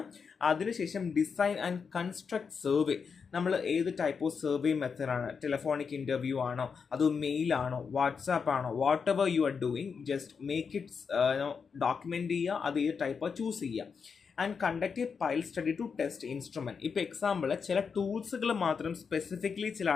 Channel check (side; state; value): right; quieter; 5.9 dB